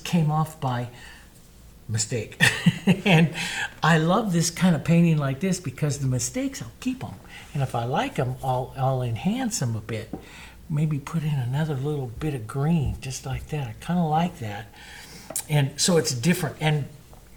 off by mistake. And I love this kind of painting like this because the mistakes, I'll keep them. And if I like them, I'll enhance them a bit. Maybe put in another little bit of green, just like that. I kind of like that. And so it's different and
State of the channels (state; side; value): identical; both; correlation 1.00